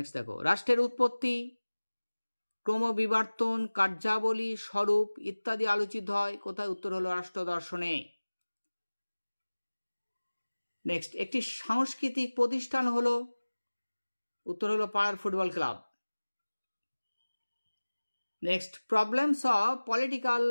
দেখো, রাষ্ট্রের উৎপত্তি, ক্রমবিবর্তন, কার্যাবলী, স্বরূপ ইত্যাদি আলোচিত হয় কোথায়, উত্তর হলো রাষ্ট্র দর্শনে। নেক্সট, একটি সাংস্কৃতিক প্রতিষ্ঠান হলো, উত্তর হলো পাড়ার football club. Next, problems of political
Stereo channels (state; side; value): inverted; both; correlation -1.00